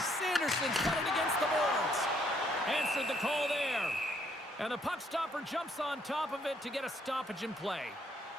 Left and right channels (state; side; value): normal; both; correlation 0.69